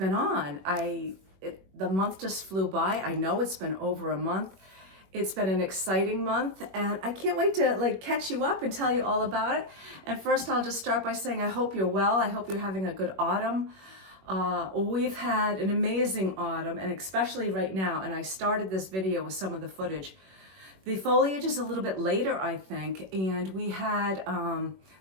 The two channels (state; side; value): late; left; 21 ms